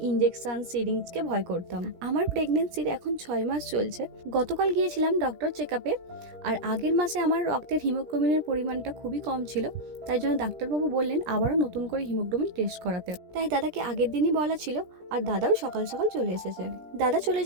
ইনজেকশন সিরিঞ্জকে ভয় করতাম। আমার প্রেগনেন্সির এখন 6 মাস চলছে। গতকাল গিয়েছিলাম ডক্টর চেকআপে। আর আগের মাসে আমার রক্তের হিমোগ্লোবিনের পরিমাণটা খুবই কম ছিল, তাই জন্য ডাক্তারবাবু বললেন আবারও নতুন করে হিমোগ্লোবিন টেস্ট করাতে। তাই দাদাকে আগের দিনই বলা ছিল, আর দাদাও সকাল সকাল চলে এসেছে। দাদা চলে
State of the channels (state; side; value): late; left; 17 ms